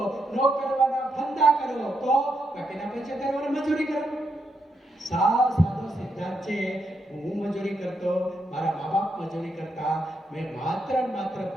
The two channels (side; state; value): both; normal; correlation 0.81